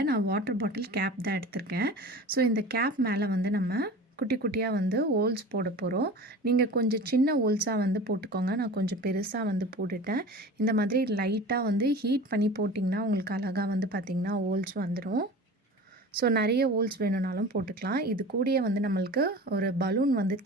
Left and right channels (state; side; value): normal; both; correlation 0.37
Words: நான் வாட்டர் பாட்டில் கேப் தான் எடுத்திருக்கேன். ஸோ இந்த கேப் மேலே வந்து நம்ம குட்டி குட்டியாக வந்து ஹோல்ஸ் போட போகிறோம். நீங்கள் கொஞ்சம் சின்ன ஹோல்ஸாக வந்து போட்டுக்கோங்க. நான் கொஞ்சம் பெருசாக வந்து போட்டுட்டேன். இந்த மாதிரி லைட்டாக வந்து ஹீட் பண்ணி போட்டிங்கன்னா உங்களுக்கு அழகாக வந்து பார்த்திங்கன்னா ஹோல்ஸ் வந்துடும். ஸோ நிறைய ஹோல்ஸ் வேணும்னாலும் போட்டுக்கலாம். இது கூடயே வந்து நம்மளுக்கு ஒரு பலூன் வந்து